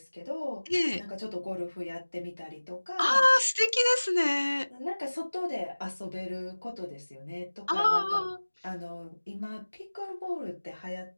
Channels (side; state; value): both; inverted; correlation -1.00